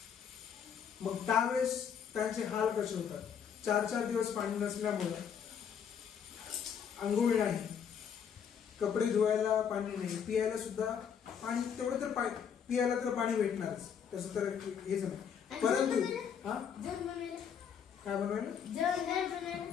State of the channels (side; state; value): right; quieter; 7.7 dB